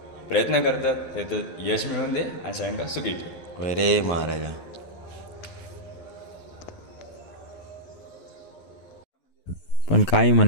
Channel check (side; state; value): right; late; 12 ms